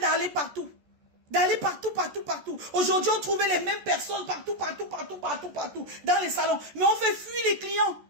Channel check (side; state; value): left; late; 14 ms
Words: partout. Partout. Aujourd'hui, on trouvait les mêmes personnes partout, dans les salons. Mais on fait fuir les clients.